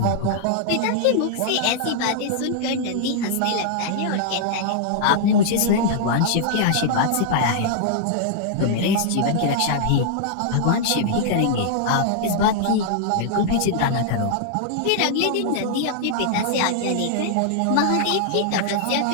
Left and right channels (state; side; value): different; both; correlation -0.01